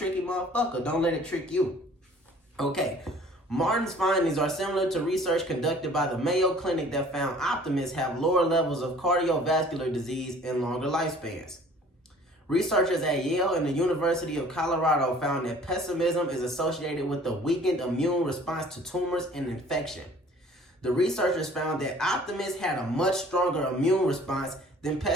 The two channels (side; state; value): both; normal; correlation 0.51